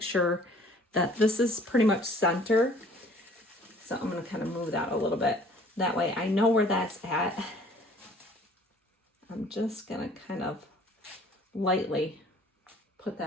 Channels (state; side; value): normal; both; correlation 0.54